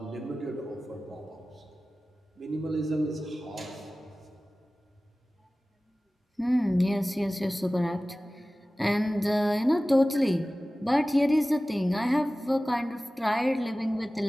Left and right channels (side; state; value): both; normal; correlation 0.97